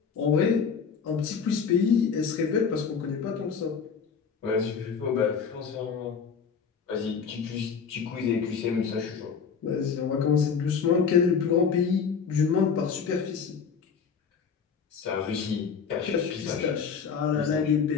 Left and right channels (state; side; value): quieter; right; 6.2 dB